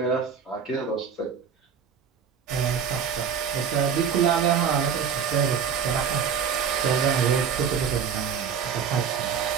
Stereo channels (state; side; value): quieter; left; 7.1 dB